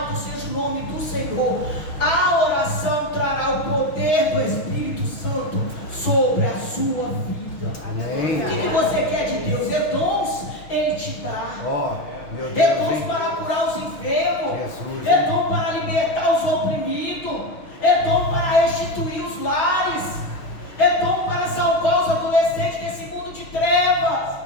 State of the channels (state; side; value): late; right; 6.3 ms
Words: seja o nome do Senhor. A oração trará o poder do Espírito Santo sobre a sua vida. Amém. O que você quer de Deus? É dons, Ele te dá. É dons para curar os enfermos, é dom para libertar os oprimidos, é dom para restituir os lares, é dom para salvar os adolescentes desse mundo de trevas.